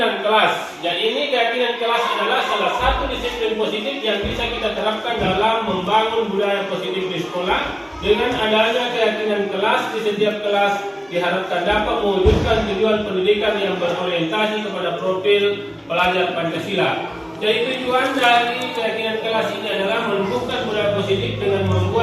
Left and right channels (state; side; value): identical; both; correlation 1.00